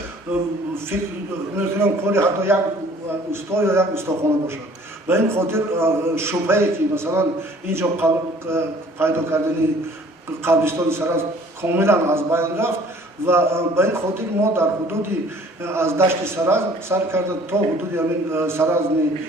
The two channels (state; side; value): normal; both; correlation 0.53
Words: فکر میکنم کاری حتی یک استا یا یک استاخانه باشد. به این خاطر شبهه‌ای که مثلا اینجا پیدا کردن قبرستان سرز کاملا از بین رفت و به این خاطر ما در حدودی از دشت سرز سر کرده تا حدودی همین سرز